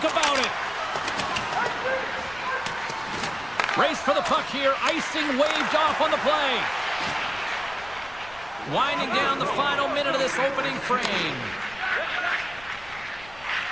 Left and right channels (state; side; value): noise; left; rumble, 21 dB below the sound